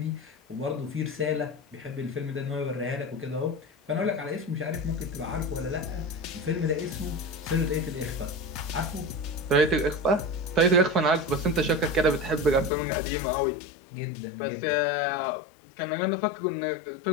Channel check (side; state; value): right; drops out; at 12.7 s